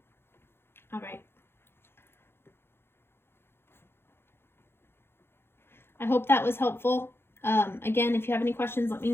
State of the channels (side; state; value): right; late; 0.11 ms